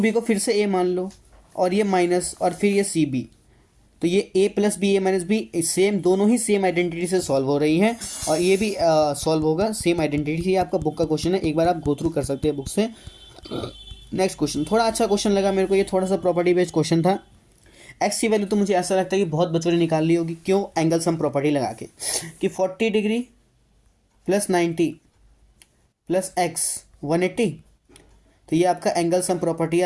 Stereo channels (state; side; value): identical; both; correlation 1.00